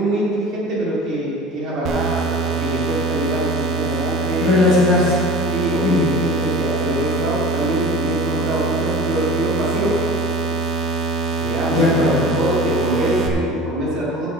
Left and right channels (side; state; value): both; normal; correlation 0.38